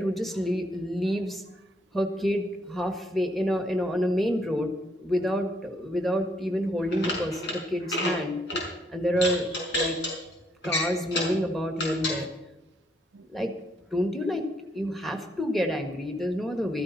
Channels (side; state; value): both; normal; correlation 0.72